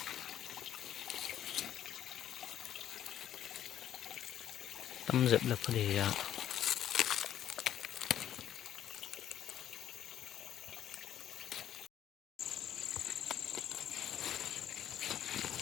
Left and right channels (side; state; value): right; quieter; 10.9 dB